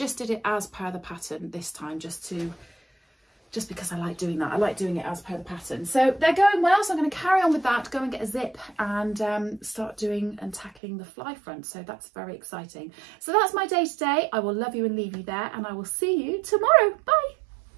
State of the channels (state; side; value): drops out; left; at 10.7 s